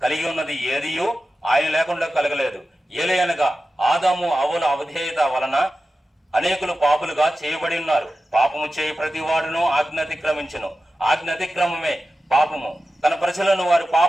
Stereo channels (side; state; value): both; normal; correlation 0.93